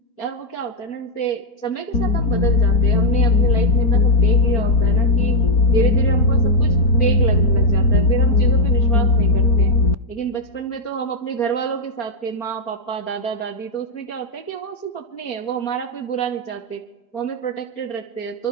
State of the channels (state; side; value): late; right; 4.4 ms